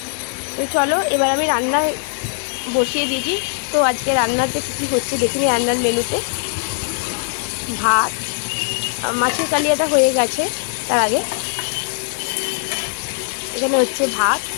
তো চলো এবার আমি রান্না বসিয়ে দিয়েছি। তো আজকে রান্নাতে কী কী হচ্ছে দেখিনি। রান্নার মেনুতে ভাত, মাছের কালিয়াটা হয়ে গেছে। তার আগে এখানে হচ্ছে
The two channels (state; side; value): silent; right; digital silence